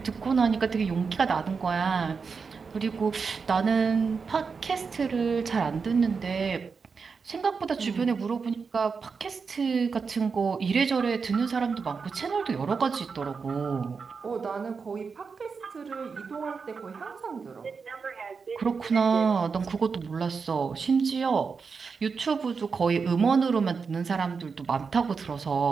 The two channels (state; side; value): quieter; left; 5.3 dB